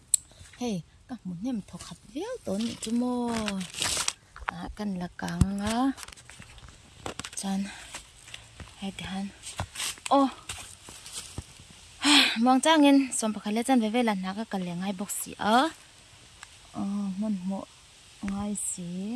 hey ka mun nem tho khat veo to ni chu mo a kan la kang a chan hey han o mong changin som pakhale chan ve ve la na ka kal lengai box si a mun mo ngai si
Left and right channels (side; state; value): both; identical; correlation 1.00